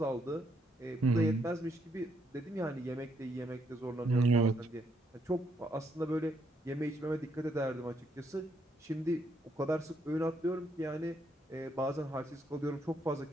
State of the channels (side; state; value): both; normal; correlation 0.74